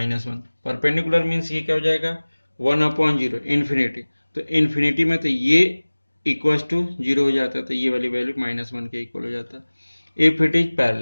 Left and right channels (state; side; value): inverted; both; correlation -1.00